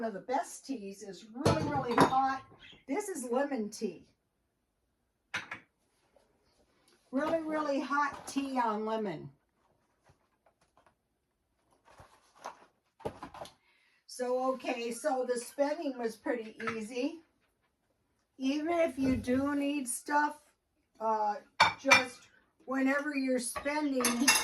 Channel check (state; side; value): identical; both; correlation 1.00